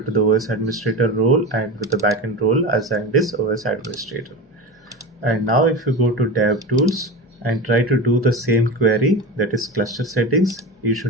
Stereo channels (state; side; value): normal; both; correlation 0.26